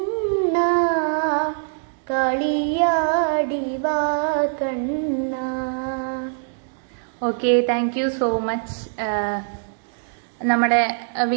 കളിയാടി വാ കണ്ണ. Okay, thank you so much. നമ്മുടെ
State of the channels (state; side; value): silent; left; digital silence